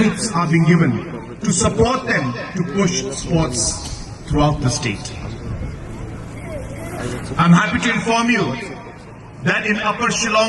are being given to support them to push sports throughout the state. I'm happy to inform you that in Upper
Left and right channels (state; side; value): identical; both; correlation 1.00